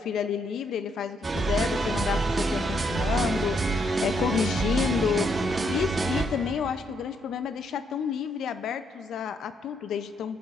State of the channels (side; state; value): both; normal; correlation 0.75